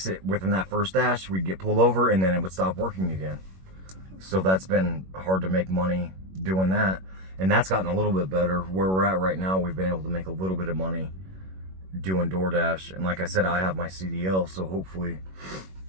it, within that first dash, we'd get pulled over, and then it would stop working again. So that's been hard to make money doing that. And that's gotten a little bit better. Where we're at right now, we've been able to make a little bit of money doing DoorDash. And like I said, I have my CDL, so hopefully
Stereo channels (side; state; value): left; late; 21 ms